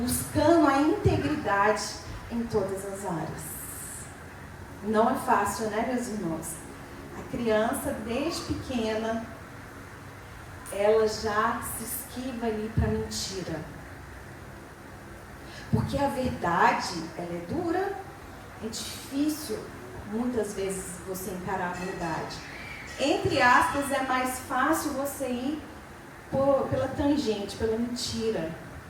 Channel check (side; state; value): both; identical; correlation 1.00